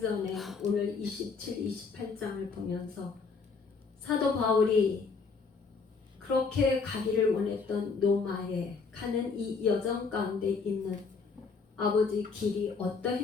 오늘 27, 28장을 보면서 사도 바울이 그렇게 가기를 원했던 로마에 가는 이 여정 가운데 있는 아버지 길이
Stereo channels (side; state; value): right; quieter; 4.8 dB